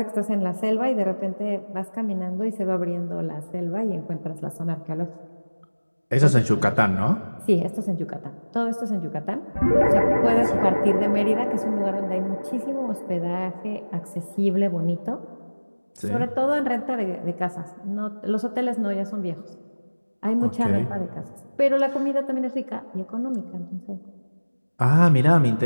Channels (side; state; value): both; inverted; correlation -1.00